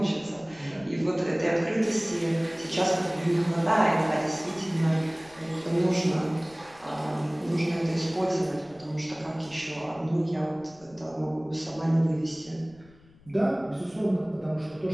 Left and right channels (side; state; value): left; noise; rumble, 26 dB below the sound